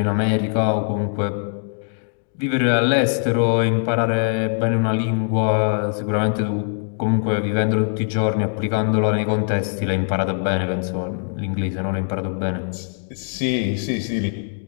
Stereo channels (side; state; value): right; silent; 62 dB below the other